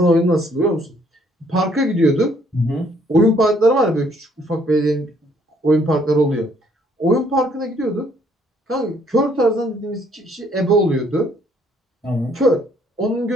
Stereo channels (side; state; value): both; normal; correlation 0.65